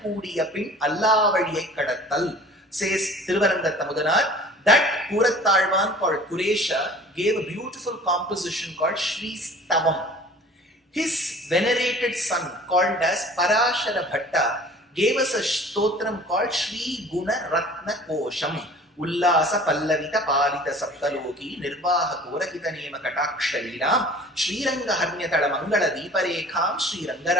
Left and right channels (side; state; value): both; normal; correlation 0.47